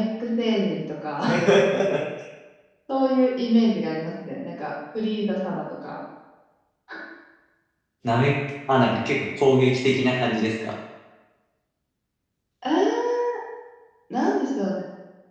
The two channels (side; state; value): both; identical; correlation 1.00